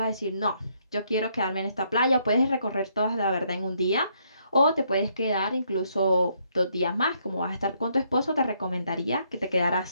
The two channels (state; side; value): inverted; both; correlation -0.72